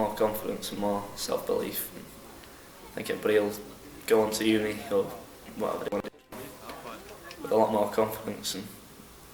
confidence and more self-belief. And I think everybody will go on to uni or whatever they want to do with a lot more confidence and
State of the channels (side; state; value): both; identical; correlation 1.00